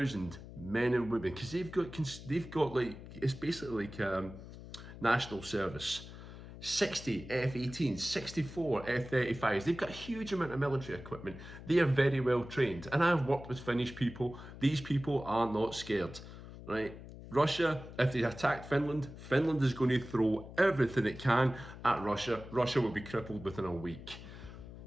men and women, because they've got it's basically like national service. 60 F-18s, 64 F-35s. They've got a huge amount of military equipment. They are very well trained. And I've worked with Finnish people. These people are not scared, right? Russia, if they attacked Finland, Finland is going to throw everything it can at Russia. Russia will be crippled within a week.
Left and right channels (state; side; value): noise; left; hum, 14 dB below the sound